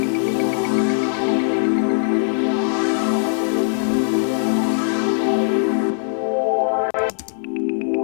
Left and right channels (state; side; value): silent; right; digital silence